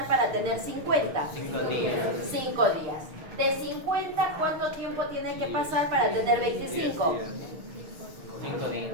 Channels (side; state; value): left; late; 6.5 ms